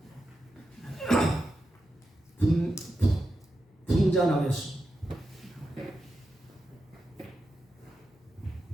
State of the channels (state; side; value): normal; both; correlation 0.89